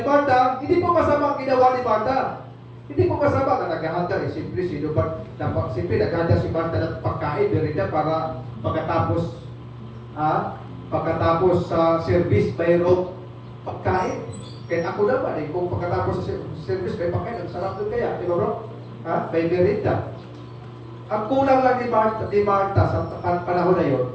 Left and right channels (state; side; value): identical; both; correlation 1.00